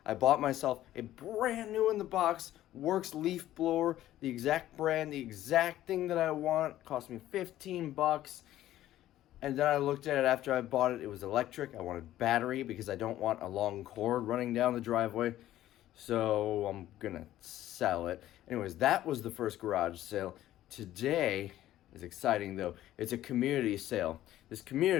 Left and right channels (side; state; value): right; quieter; 13.6 dB